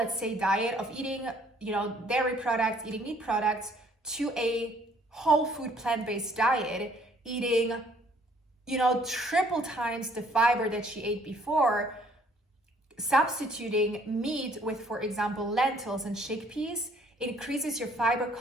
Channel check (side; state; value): both; normal; correlation 0.61